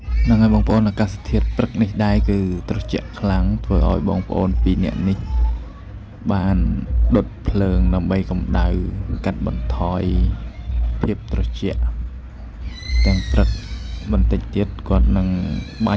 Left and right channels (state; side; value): identical; both; correlation 1.00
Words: នឹងហើយបងប្អូនអាកាសធាតុព្រឹកនេះដែរគឺត្រជាក់ខ្លាំងធ្វើឲ្យបងប្អូនពីរនាក់នេះបានដុតភ្លើងដើម្បីកម្ដៅកាត់បន្ថយភាពត្រជាក់ទាំងព្រឹកបន្តិចទៀតគាត់នឹងបា